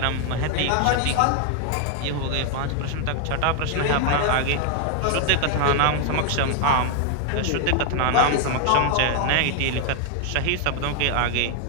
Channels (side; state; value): both; different; correlation 0.00